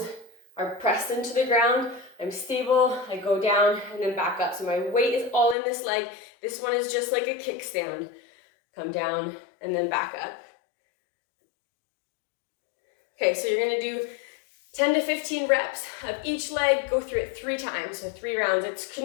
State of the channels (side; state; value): right; drops out; at 5.6 s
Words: are pressed into the ground. I'm stable, I go down and then back up. So my weight is all in this leg. This one is just like a kickstand. Come down and then back up. Okay, so you're gonna do 10 to 15 reps of each leg, go through it 3 times, so 3 rounds. It's